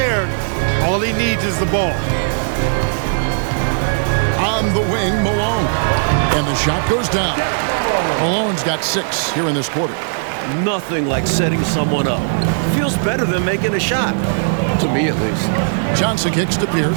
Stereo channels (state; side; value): silent; left; digital silence